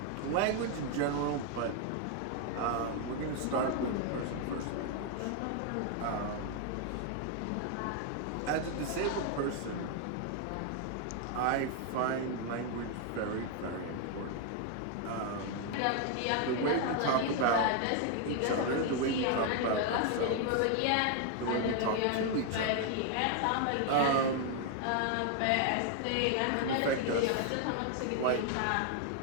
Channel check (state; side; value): different; both; correlation 0.00